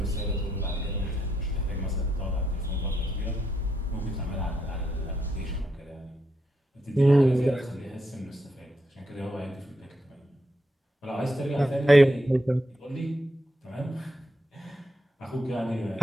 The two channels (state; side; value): normal; both; correlation 0.81